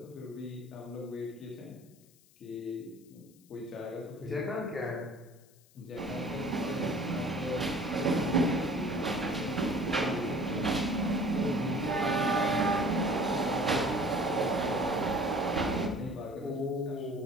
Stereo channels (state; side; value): noise; left; hiss, 29 dB below the sound